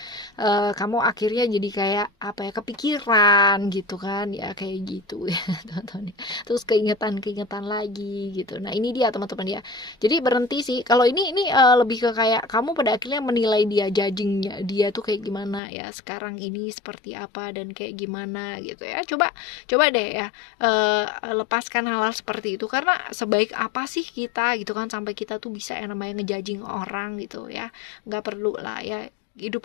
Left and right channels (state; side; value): drops out; right; at 15.6 s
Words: kamu akhirnya jadi kayak apa ya, kepikiran gitu kan ya, kayak gitu ya teman-teman. Terus keingetan lagi gitu. Nah ini dia teman-teman ya, jadi berhenti sih kalau ini lebih ke kayak kamu pada akhirnya menilai dia, judgingnya dia tuh kayak gimana ya sekarang ini, seperti apa dan kayak gimana gitu ya. Coba deh ya lepaskan hal-hal seperti itu, karena sebaik apa sih kita gitu kan sampai kita tuh bisa yang namanya ngejudging orang gitu ya. Nggak perlu lah ya, hidup